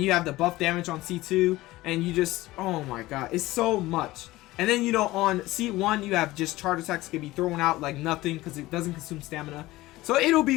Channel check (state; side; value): quieter; right; 18.1 dB